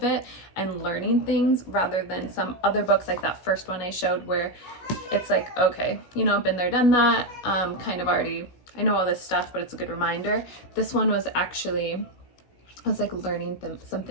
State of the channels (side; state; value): right; late; 16 ms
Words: it and learning things, rather than some other books like that first one I showed, where it's like, okay, been there, done that, kind of already, I know all this stuff, but it's a good reminder. This one was actually, I was like learning some